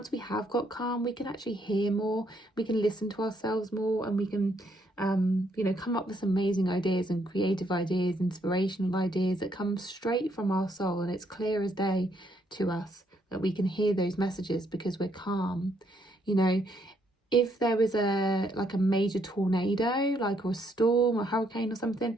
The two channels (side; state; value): both; normal; correlation 0.72